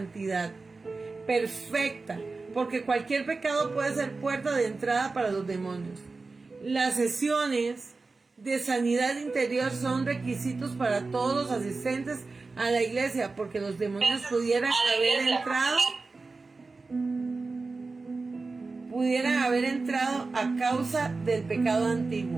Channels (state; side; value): quieter; left; 3.9 dB